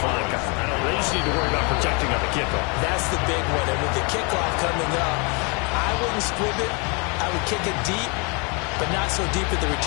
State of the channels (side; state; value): right; quieter; 32.3 dB